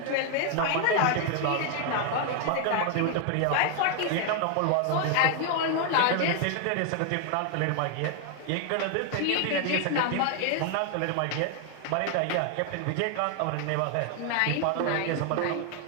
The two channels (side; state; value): both; different; correlation 0.00